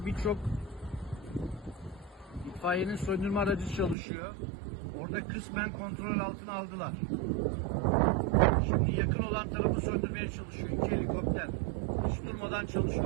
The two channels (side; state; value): left; drops out; at 4.0 s